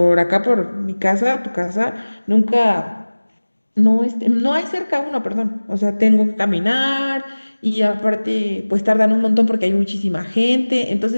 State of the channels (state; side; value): inverted; both; correlation -1.00